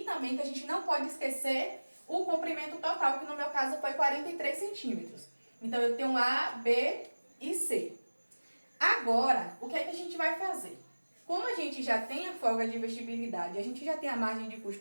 também, que a gente não pode esquecer, o comprimento total, que no meu caso foi 43 centímetros. Então, eu tenho A, B e C. Agora, o que é que a gente vai fazer? Como a gente já tem a folga de vestibilidade, a gente já tem a margem de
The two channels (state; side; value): inverted; both; correlation -1.00